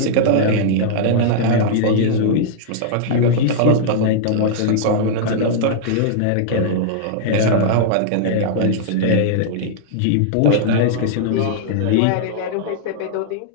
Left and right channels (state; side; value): different; both; correlation -0.02